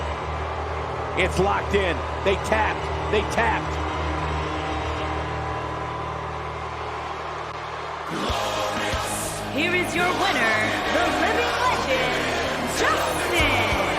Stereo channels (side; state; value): both; identical; correlation 1.00